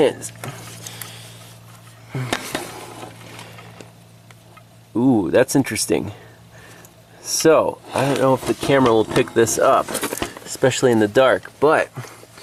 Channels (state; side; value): identical; both; correlation 1.00